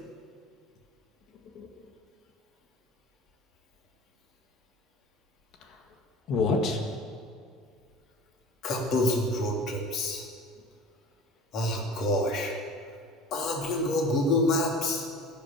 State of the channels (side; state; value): both; normal; correlation 0.40